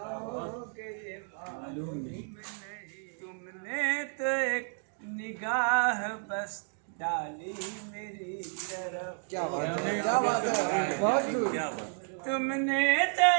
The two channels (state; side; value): silent; left; 57 dB below the other